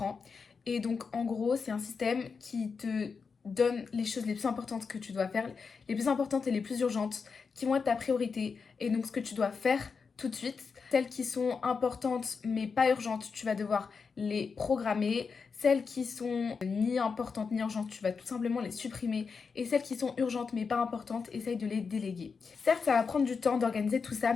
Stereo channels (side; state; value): right; quieter; 5.3 dB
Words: Et donc en gros, c'est un système qui te donne les choses les plus importantes que tu dois faire, les plus importantes et les plus urgentes, qui vont être ta priorité. Et donc ce que tu dois faire tout de suite. Celles qui sont importantes mais pas urgentes, tu vas devoir les programmer. Celles qui sont ni importantes ni urgentes, tu vas tout simplement les supprimer. Et celles qui sont urgentes mais pas importantes, essaye de les déléguer. Certes, ça va prendre du temps d'organiser tout ça,